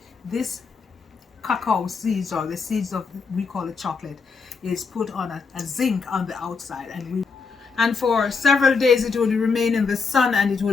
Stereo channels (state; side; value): quieter; right; 5.0 dB